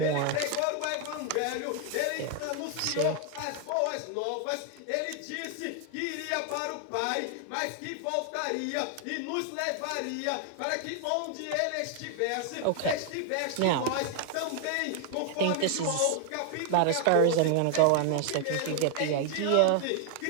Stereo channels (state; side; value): different; both; correlation 0.00